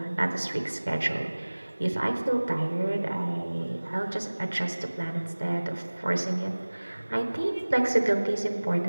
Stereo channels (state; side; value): inverted; both; correlation -1.00